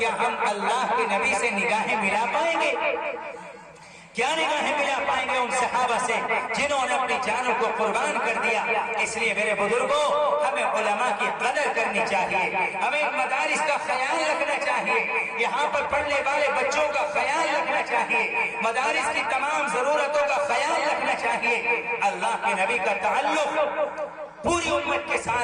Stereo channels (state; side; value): identical; both; correlation 1.00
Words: ہم اللہ کے نبی سے نگاہیں ملا پائیں گے؟ کیا نگاہیں ملا پائیں گے ان صحابہ سے جنہوں نے اپنی جانوں کو قربان کر دیا؟ اس لیے میرے بزرگوں، ہمیں علماء کی قدر کرنی چاہیے، ہمیں مدارس کا خیال رکھنا چاہیے، یہاں پر پڑھنے والے بچوں کا خیال رکھنا چاہیے، مدارس کی تمام ضرورتوں کا خیال رکھنا چاہیے۔ اللہ کے نبی کا تعلق پوری امت کے